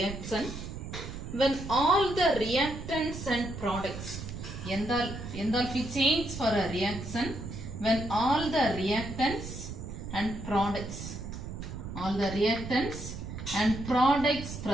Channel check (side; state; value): right; noise; rumble, 8 dB below the sound